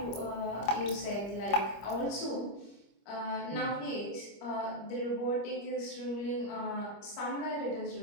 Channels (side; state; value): right; late; 25 ms